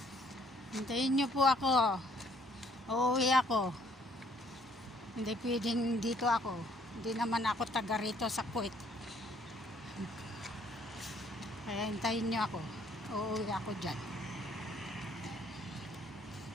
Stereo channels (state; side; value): normal; both; correlation 0.63